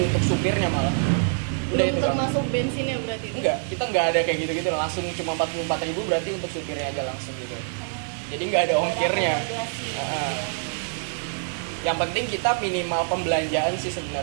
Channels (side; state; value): left; silent; 62 dB below the other